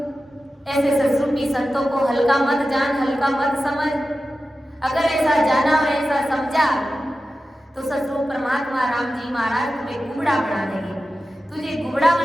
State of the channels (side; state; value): both; normal; correlation 0.93